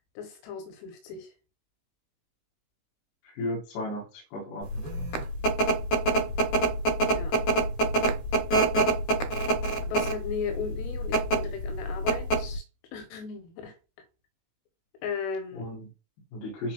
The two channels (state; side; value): late; right; 19 ms